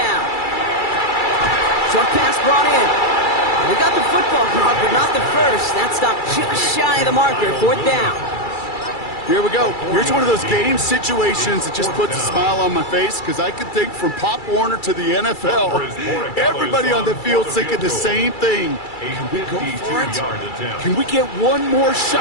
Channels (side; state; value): right; late; 2.3 ms